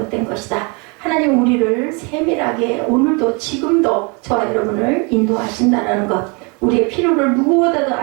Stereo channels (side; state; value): left; quieter; 31.6 dB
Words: 것이다. 하나님은 우리를 세밀하게 오늘도 지금도 저와 여러분을 인도하신다는 것. 우리의 필요를 누구보다도